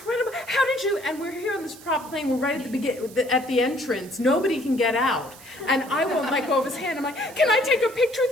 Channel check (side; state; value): right; noise; hiss, 20 dB below the sound